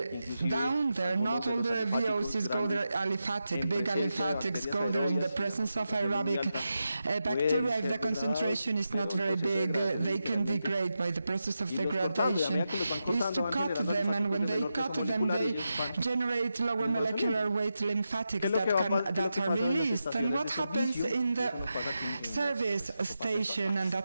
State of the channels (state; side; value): inverted; both; correlation -0.89